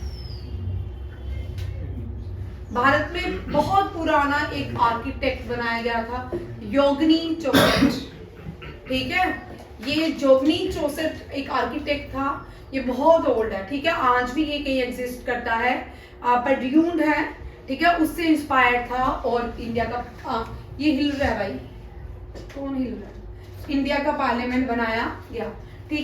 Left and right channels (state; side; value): identical; both; correlation 1.00